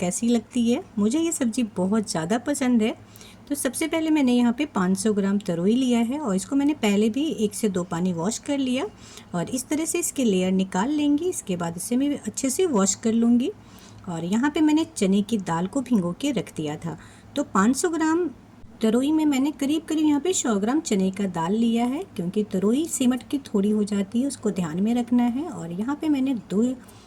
लगती है। मुझे ये सब्जी बहुत ज़्यादा पसंद है। तो सबसे पहले मैंने यहाँ पे 500 ग्राम तरोई लिया है और इसको मैंने पहले भी 1 से 2 पानी वॉश कर लिया और इस तरह से इसके लेयर निकाल लेंगी। इसके बाद इसे मैं अच्छे से वॉश कर लूँगी। और यहाँ पे मैंने चने की दाल को भिगो के रख दिया था। तो 500 ग्राम तरोई में मैंने करीब यहाँ पे 100 ग्राम चने का दाल लिया है, क्योंकि तरोई सिमट की थोड़ी हो जाती है, उसको ध्यान में रखना है। और यहाँ पे मैंने 2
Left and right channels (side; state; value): both; identical; correlation 1.00